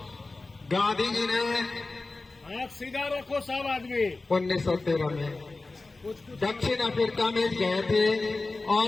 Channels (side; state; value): right; quieter; 3.4 dB